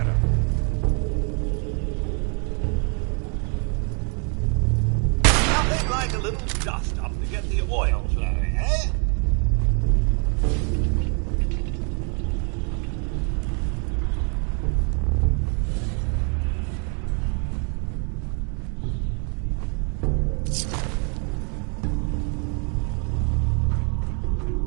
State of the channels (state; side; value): quieter; left; 35.8 dB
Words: Nothing like a little dust up to get the oil flowing, eh?